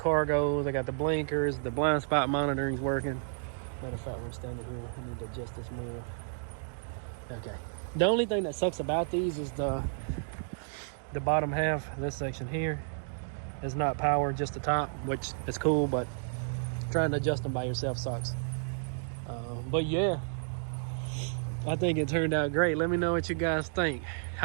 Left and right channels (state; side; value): silent; left; digital silence